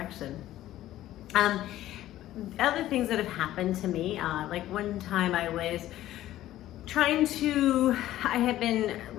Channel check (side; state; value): right; quieter; 14.0 dB